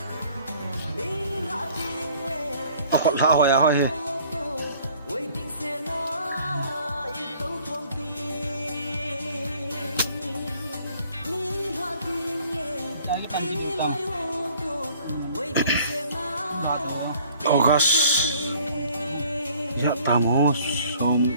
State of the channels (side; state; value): both; inverted; correlation -0.55